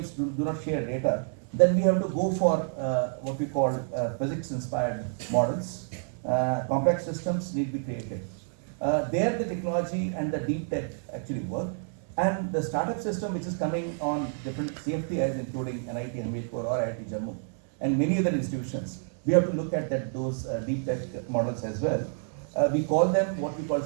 do not share data. Then we have to go for what we call physics-inspired models. Complex systems need to be created. There the technology and the deep tech actually work. And the startup system, which is coming on different CFTIs, including NIT, Hamirpur, or IIT Jammu, and many other institutions, we have to look at those deep tech models as well. We call them what we call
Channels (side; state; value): left; silent; 59 dB below the other